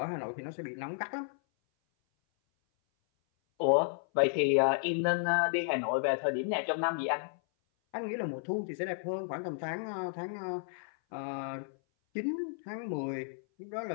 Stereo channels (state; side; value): silent; right; 56 dB below the other